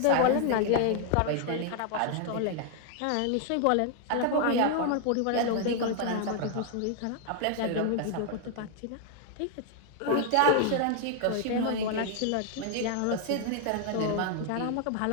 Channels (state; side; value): different; both; correlation 0.00